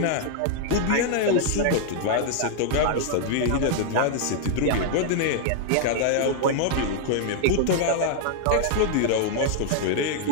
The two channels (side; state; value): both; different; correlation -0.01